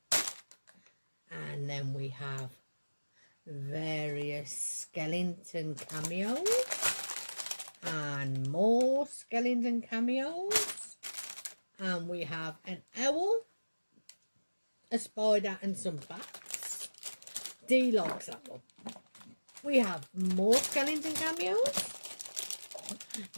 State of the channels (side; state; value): both; inverted; correlation -1.00